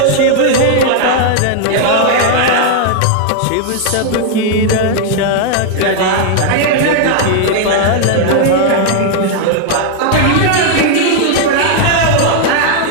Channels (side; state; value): both; different; correlation 0.00